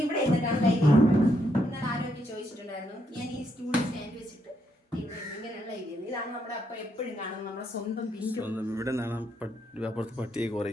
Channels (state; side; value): normal; both; correlation 0.76